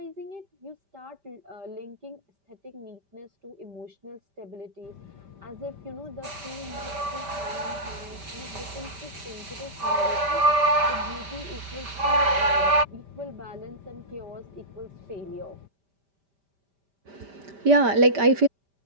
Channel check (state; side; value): late; left; 5.1 ms